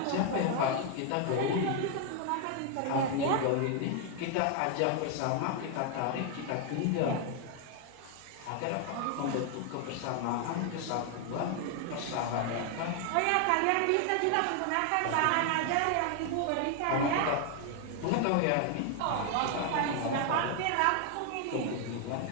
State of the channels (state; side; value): different; both; correlation 0.00